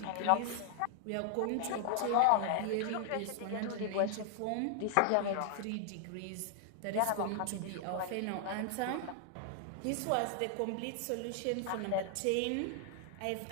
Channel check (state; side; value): different; both; correlation 0.00